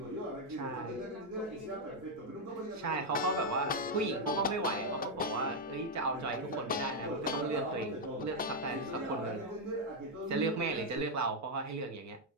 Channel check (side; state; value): both; normal; correlation 0.00